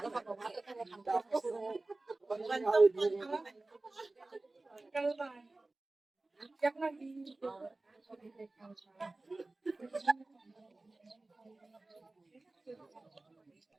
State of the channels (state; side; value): quieter; left; 3.1 dB